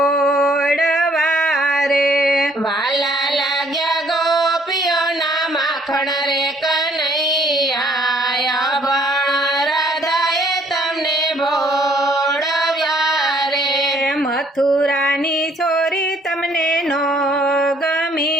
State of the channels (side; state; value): both; normal; correlation 0.63